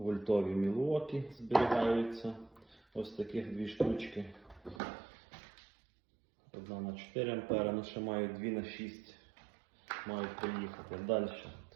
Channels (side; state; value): left; drops out; at 4.8 s